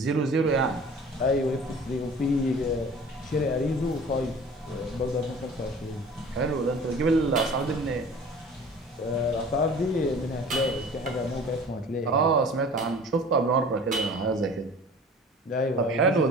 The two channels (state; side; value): normal; both; correlation 0.44